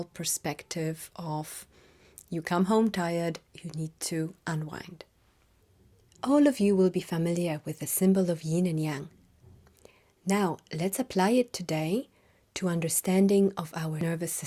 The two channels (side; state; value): both; identical; correlation 1.00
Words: perspective of you come home tired, you need to unwind. All of you will be familiar with the symbol of Yin and Yang. Now, let's apply it today to understanding of our nervous